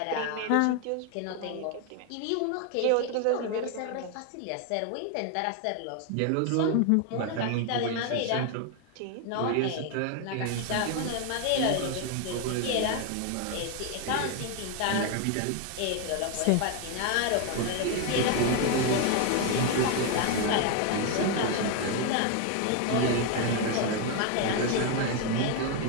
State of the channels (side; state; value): both; different; correlation 0.01